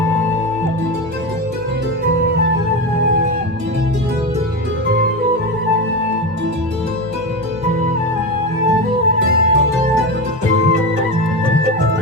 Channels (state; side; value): normal; both; correlation 0.19